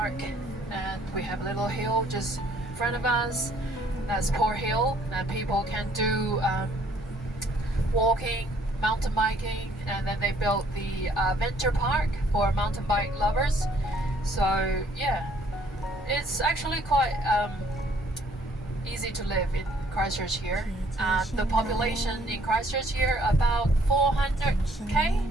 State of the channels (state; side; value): normal; both; correlation 0.62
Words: And we have a little hill just in front of us. That's Port Hill, and people can do walking, mountain biking, and then they built the venture park for mountain bike lovers. So yeah, it's actually quite easy to live in Christchurch here. The population in Christchurch here about 400k.